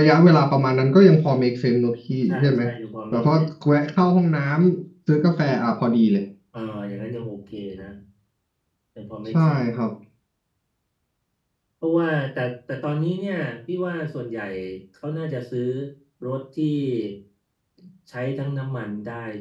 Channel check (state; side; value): identical; both; correlation 1.00